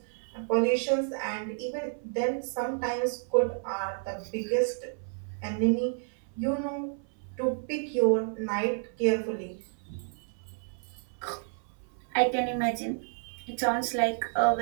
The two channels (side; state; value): left; silent; 58 dB below the other